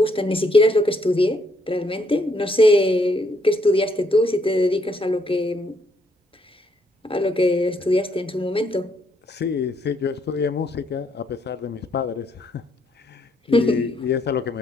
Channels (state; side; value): normal; both; correlation 0.72